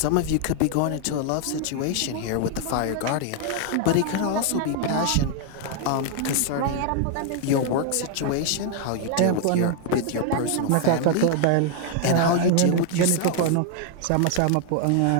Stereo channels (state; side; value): different; both; correlation 0.00